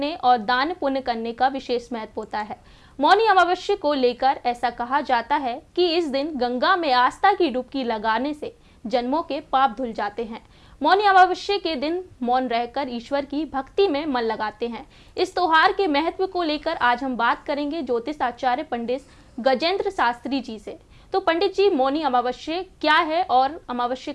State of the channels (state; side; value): identical; both; correlation 1.00